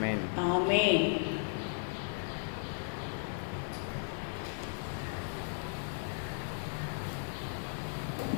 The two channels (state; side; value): silent; right; 54 dB below the other